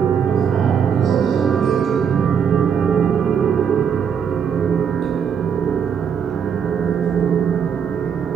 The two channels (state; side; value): quieter; left; 7.4 dB